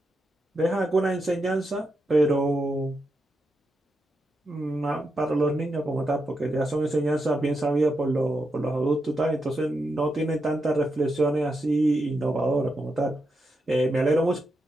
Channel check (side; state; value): both; normal; correlation 0.85